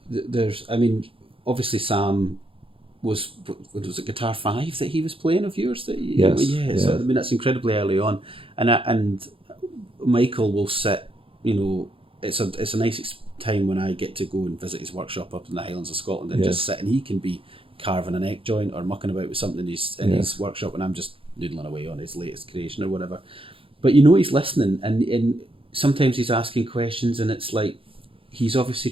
there's, obviously Sam was it Guitar 5 that he was playing of yours? So that's incredibly early on, and Michael will sit, in it's a nice time when I get to go and visit his workshop up in the Highlands of Scotland and just sit, and he can be carving an neck joint or mucking about with something in his workshop, and I'm just noodling away on his latest creation or whatever. But he's listening, and sometimes he's asking questions, and it's like he's obviously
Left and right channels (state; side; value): late; left; 0.26 ms